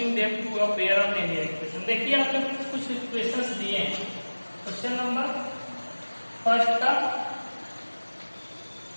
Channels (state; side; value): inverted; both; correlation -1.00